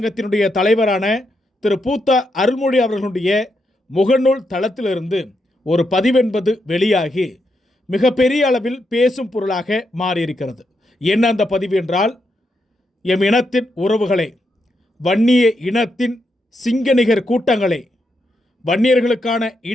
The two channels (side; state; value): both; normal; correlation 0.82